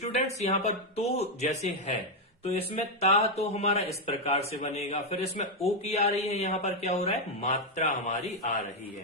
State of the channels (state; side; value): normal; both; correlation 0.02